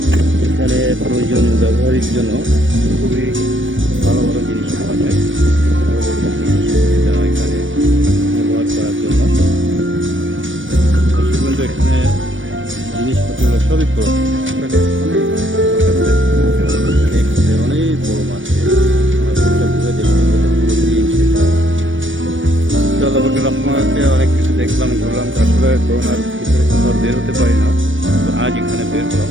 এখানে প্রয়োজনীয় ব্যবহারের জন্য খুবই ভালো ভালো জিনিস পাওয়া যায়। এখানে ব্যবহার করার জন্য কিন্তু এখানে জিনিসপত্রগুলো সবই পুরোনো, অনেক বড় মার্কেট। ঘুরে দেখতে আপনাকে অনেক কিছু দেখলাম, ঘুরলাম, আসলে করোনার ভিতরে কোথাও বের হতে পারি না। তো আজ এখানে বের হলাম,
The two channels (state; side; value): late; left; 0.56 ms